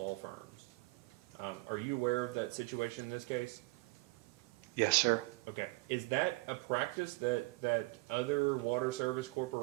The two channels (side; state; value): left; quieter; 24.4 dB